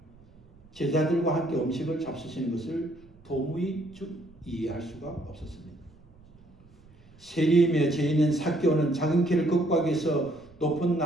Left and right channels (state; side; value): noise; right; rumble, 27 dB below the sound